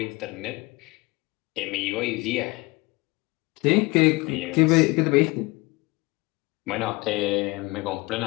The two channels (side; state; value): right; quieter; 23.7 dB